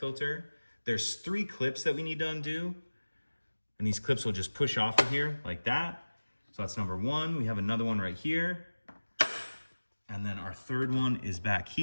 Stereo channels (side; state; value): both; inverted; correlation -1.00